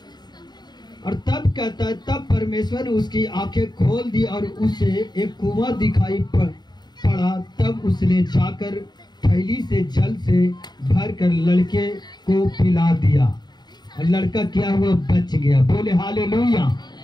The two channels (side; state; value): right; late; 0.20 ms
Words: और तब कहता है, तब परमेश्वर ने उसकी आंखें खोल दी और उसे एक कुआं दिखाई पड़ा। तब उसने जाकर थैली से जल से भरकर लड़के को पिला दिया और लड़का क्या हुआ? बच गया। बोले हालेलुया।